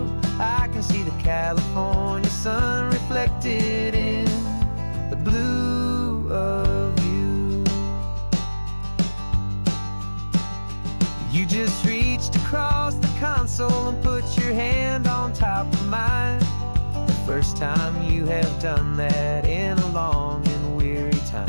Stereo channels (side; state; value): both; inverted; correlation -1.00